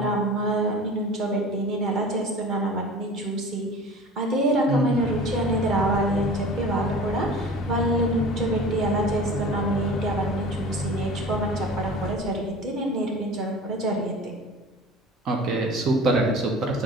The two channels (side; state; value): both; normal; correlation 0.39